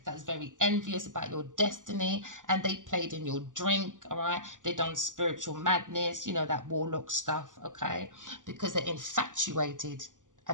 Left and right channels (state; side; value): late; left; 0.87 ms